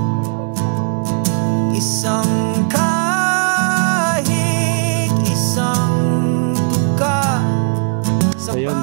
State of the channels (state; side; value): silent; left; digital silence